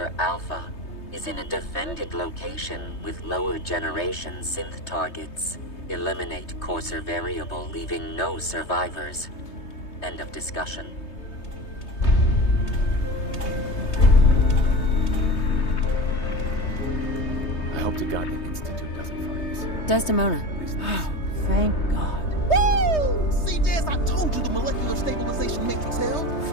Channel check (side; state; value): right; late; 3.2 ms